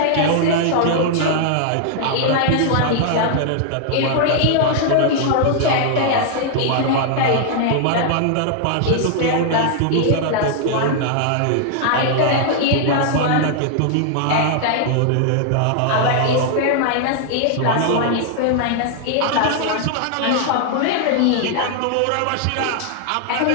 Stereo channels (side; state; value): both; different; correlation 0.00